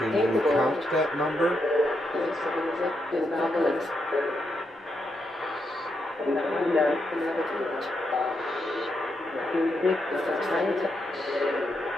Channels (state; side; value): normal; both; correlation 0.81